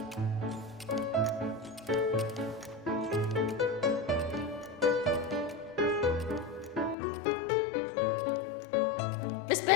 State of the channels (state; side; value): drops out; right; at 7.0 s